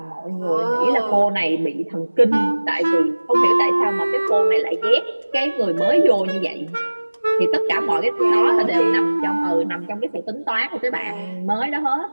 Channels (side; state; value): both; inverted; correlation -1.00